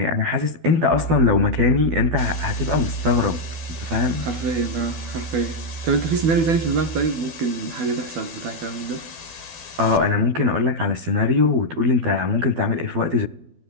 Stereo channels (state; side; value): late; left; 12 ms